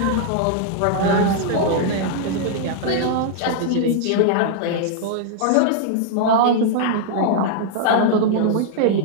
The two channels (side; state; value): both; different; correlation -0.01